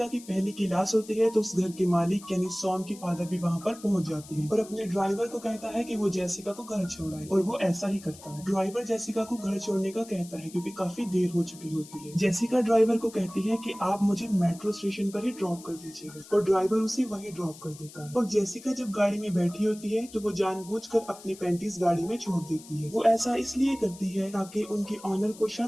की पहली क्लास होती है तो उस घर के मालिक यानी सॉन की फादर भी वहाँ पर पहुंच जाती है और अपने ड्राइवर को कहता है कि वो जेसिका को घर छोड़ाए और वो ऐसा ही करता है। ड्राइवर जेसिका को घर छोड़ने का कहता है क्योंकि काफी देर हो चुकी होती है। जेसिका ड्राइवर को कहती है कि आप मुझे मेट्रो स्टेशन पर ही ड्रॉप कर दीजिएगा और ड्राइवर उसे वहीं ड्रॉप कर देता है। और जेसिका जब गाड़ी में बैठी होती है तो वो जानबूझकर अपनी पैंटीज गाड़ी में छोड़ देती है। वो ऐसा इसलिए करती है ताकि उनके ऑनर को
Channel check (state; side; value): noise; left; hiss, 19 dB below the sound